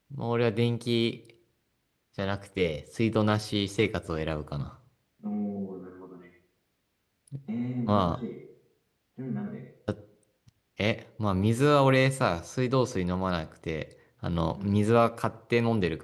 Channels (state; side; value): identical; both; correlation 1.00